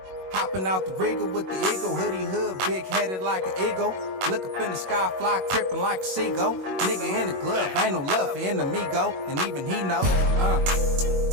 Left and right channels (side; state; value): left; late; 21 ms